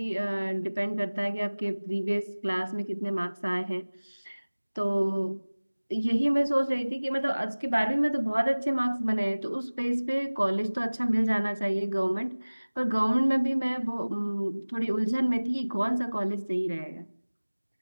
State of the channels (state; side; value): inverted; both; correlation -1.00